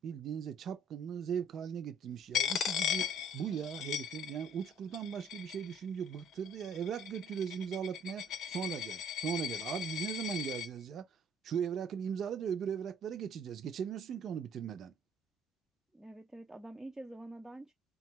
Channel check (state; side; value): normal; both; correlation 0.58